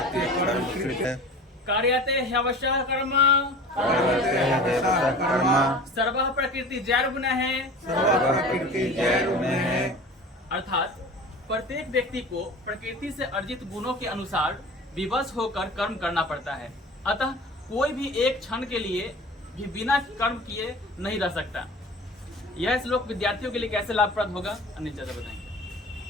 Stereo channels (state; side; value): normal; both; correlation 0.38